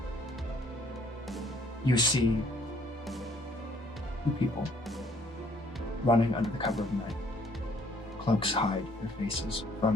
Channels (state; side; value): normal; both; correlation 0.63